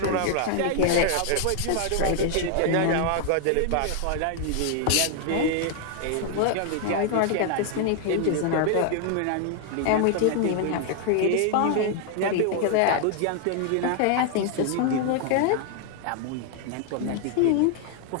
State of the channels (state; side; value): different; both; correlation 0.00